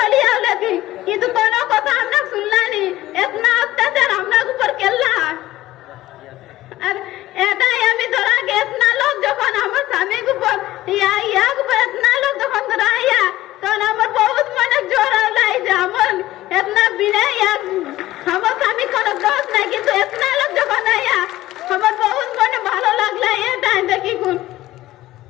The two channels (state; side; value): quieter; right; 15.9 dB